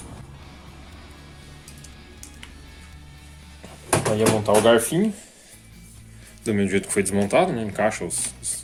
Aí é montar o garfinho, do mesmo jeito que foi desmontado, né? Encaixa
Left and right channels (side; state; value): both; identical; correlation 1.00